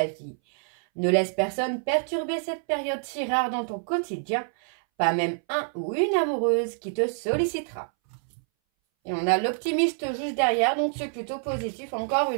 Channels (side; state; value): left; silent; 60 dB below the other